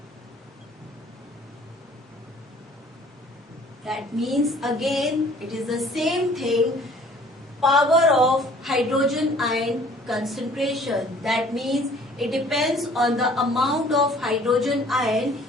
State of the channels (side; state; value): both; normal; correlation 0.54